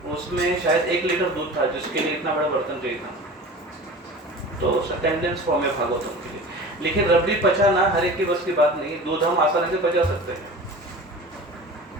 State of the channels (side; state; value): both; normal; correlation 0.37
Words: उसमें शायद 1 लीटर दूध था, जिसके लिए इतना बड़ा बर्तन चाहिए था, तो कंडेंस फॉर्म है भागवतम के लिए। लेकिन रबड़ी पचाना हर एक की बस की बात नहीं, दूध हम आसानी से पचा सकते हैं,